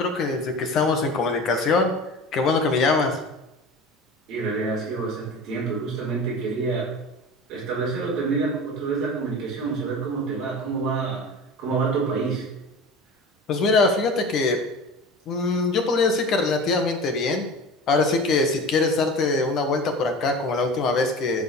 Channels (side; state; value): both; normal; correlation 0.35